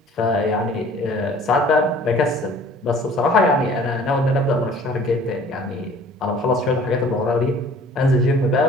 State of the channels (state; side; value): normal; both; correlation 0.51